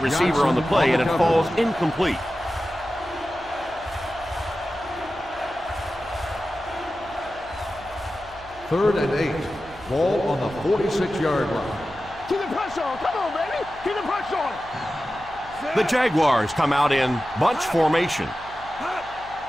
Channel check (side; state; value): right; noise; hum, 21 dB below the sound